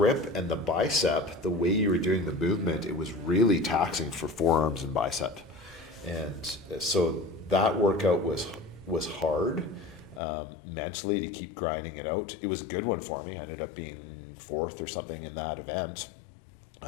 and the bicep, the way you were doing the movement, it was really taxing for forearms and bicep. And so that workout was hard mentally to keep grinding it out. It was a good one for me. I ended up being 4th or something in that event.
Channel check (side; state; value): right; drops out; at 10.2 s